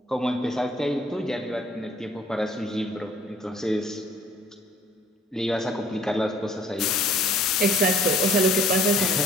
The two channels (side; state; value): both; normal; correlation 0.57